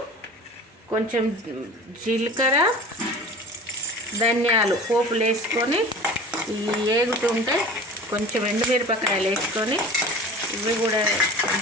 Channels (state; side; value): normal; both; correlation 0.39